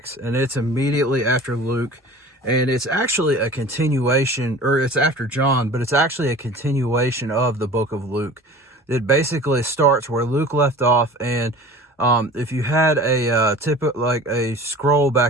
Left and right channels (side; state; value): both; normal; correlation 0.41